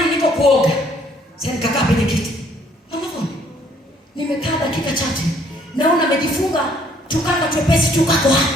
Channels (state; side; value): normal; both; correlation 0.63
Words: niko kuoga. Sasa nikakaa kwenye kiti. Mama Vone, nimekaa dakika chache. Naona amejifunga tukanga twepesi tukako